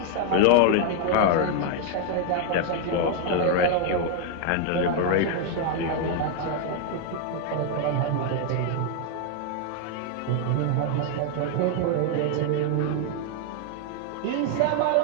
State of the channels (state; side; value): different; both; correlation 0.00